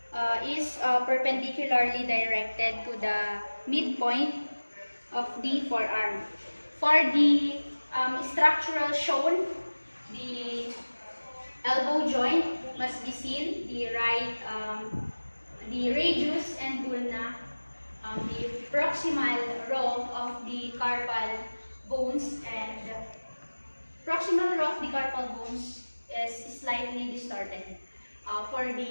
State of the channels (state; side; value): inverted; both; correlation -1.00